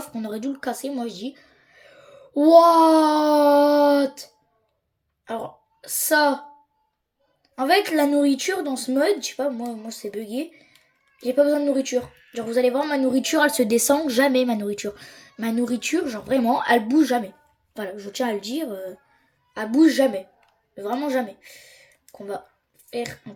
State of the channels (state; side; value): identical; both; correlation 1.00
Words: On aurait dû le casser, moi je dis. What? Alors, ça. En fait, la nourriture dans ce mode, je sais pas, moi c'est bugué. J'ai pas besoin de nourriture. Genre, vous allez voir, ma nourriture, elle se descend jamais, ma nourriture. Ma nourriture, genre vraiment, elle bouge jamais. Voilà, je tiens à le dire, elle bouge jamais. Vraiment jamais. Qu'on va faire un